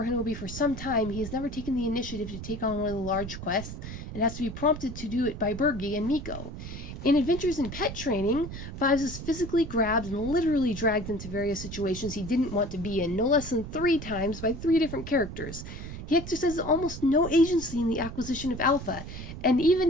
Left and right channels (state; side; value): noise; right; rumble, 9 dB below the sound